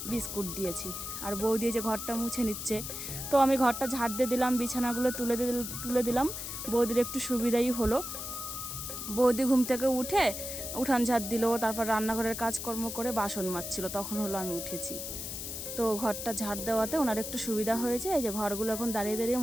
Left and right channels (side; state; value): left; noise; hiss, 6 dB below the sound